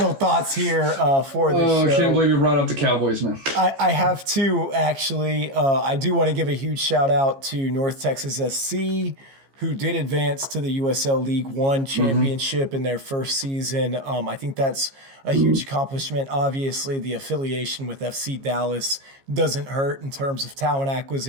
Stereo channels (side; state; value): left; late; 15 ms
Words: thoughts here for this show. I can't believe you brought up the Cowboys, man. I have two, actually. I do want to give a huge shout out to North Texas SC, who did advance to the USL League One championship in their first season. I think that's a huge accomplishment. Obviously, the affiliation with FC Dallas doesn't hurt in terms of talent